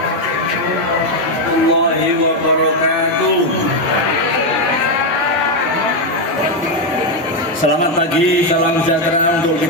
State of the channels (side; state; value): both; normal; correlation 0.05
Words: Selamat pagi, salam sejahtera untuk